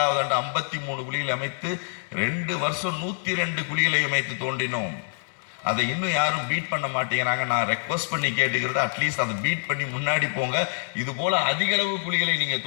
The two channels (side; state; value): right; silent; 61 dB below the other